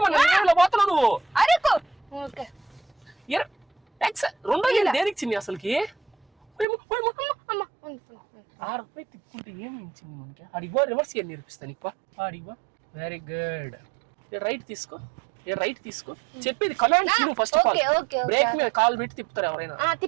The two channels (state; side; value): drops out; left; at 6.7 s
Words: మన పోతున్నావు నువ్వు. అరేకో. ఓకే. రెండో గేర్ దేనికి చిన్ని అసలుకి? అమ్మ, రూపాయి తిప్పుకుంటే ఏమి ఇచ్చింది మనకి? అడిగో రివర్స్ గేర్ నేర్పిస్తాను నీకు. అడిగో. Very good. రైట్ తీసుకో. రైట్ తీసుకో. చెప్పేది కమాండ్స్ నువ్వు ఫస్ట్ ఆఫ్ ఆల్. బ్రేక్ మీద కాల్ పెట్టి తిప్పుతారు ఎవరైనా.